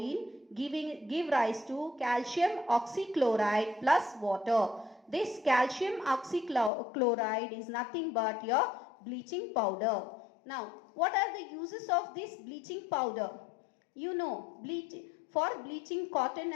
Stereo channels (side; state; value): right; drops out; at 6.7 s